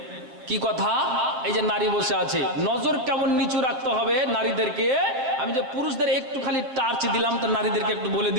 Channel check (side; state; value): left; late; 7.8 ms